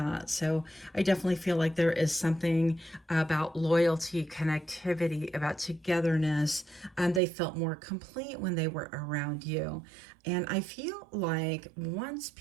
So I definitely feel like there is something about loyalty, connectivity, about togetherness. They felt more complete when they were around you. And I feel like once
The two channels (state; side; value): drops out; left; at 7.2 s